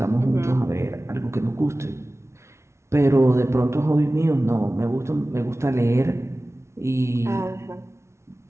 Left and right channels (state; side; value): late; left; 0.13 ms